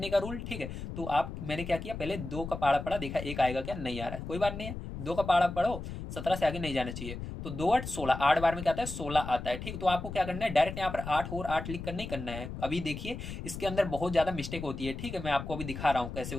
का रूल, ठीक है। तो आप मैंने क्या किया, पहले दो का पाड़ा पढ़ा, देखा एक आएगा क्या, नहीं आ रहा है, कोई बात नहीं है, दो का पाड़ा पढ़ो, 17 से आगे नहीं जाना चाहिए। तो दो आठ 16, 8 बार में क्या आता है, 16 आता है, ठीक। तो आपको क्या करना है, डायरेक्ट यहाँ पर 8 और 8 लिख कर नहीं करना है। अभी देखिए इसके अंदर बहुत ज्यादा मिस्टेक होती है, ठीक है, मैं आपको अभी दिखा रहा हूँ कैसे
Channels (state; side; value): noise; left; rumble, 8 dB below the sound